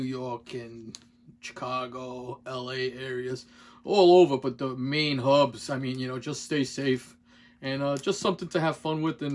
and Chicago, LA areas, all over. But the main hubs, I mean, you know, just stay safe and just something to have fun with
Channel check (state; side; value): identical; both; correlation 1.00